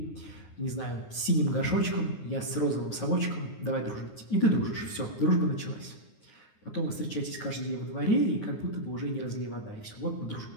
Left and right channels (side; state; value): right; late; 9.6 ms